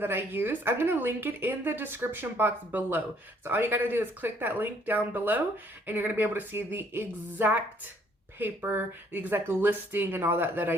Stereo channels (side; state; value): both; normal; correlation 0.64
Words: I use. I'm going to link it in the description box below. So all you got to do is click that link down below, and you're going to be able to see the exact paper, the exact listing and all that